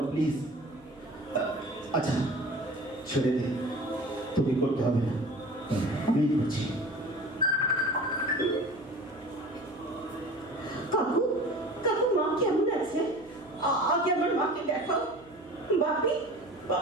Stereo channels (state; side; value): noise; right; hum, 25 dB below the sound